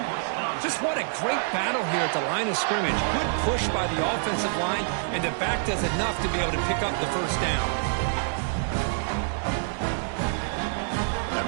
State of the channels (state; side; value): silent; left; digital silence